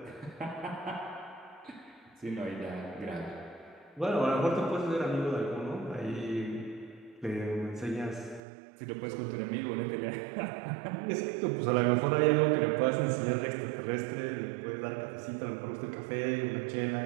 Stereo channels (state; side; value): drops out; left; at 8.4 s